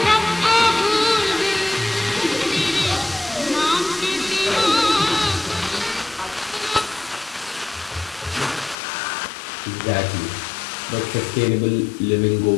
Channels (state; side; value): drops out; right; at 8.8 s